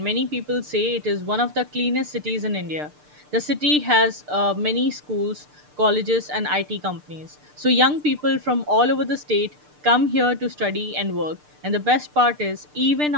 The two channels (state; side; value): late; left; 6.7 ms